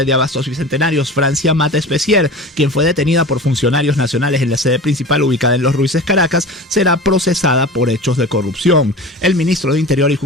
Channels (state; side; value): normal; both; correlation 0.34